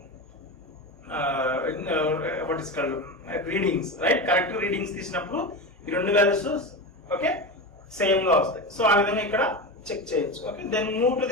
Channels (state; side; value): normal; both; correlation 0.22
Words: what is called readings, right correct readings తీసినప్పుడు ఈ రెండు వాల్యూస్ ఓకే సేమ్ గా వస్తాయి. సో ఆ విధంగా ఇక్కడ చెక్ చేయొచ్చు. Okay, then move to